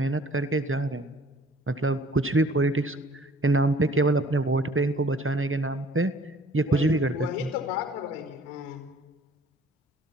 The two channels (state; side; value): normal; both; correlation 0.54